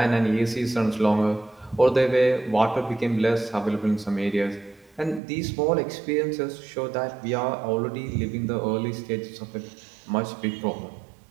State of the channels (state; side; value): drops out; left; at 5.2 s